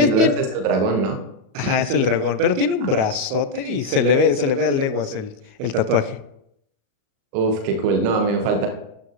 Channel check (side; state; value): left; late; 37 ms